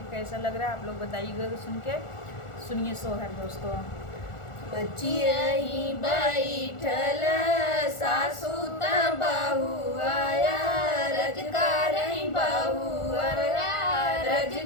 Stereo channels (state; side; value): late; right; 1.4 ms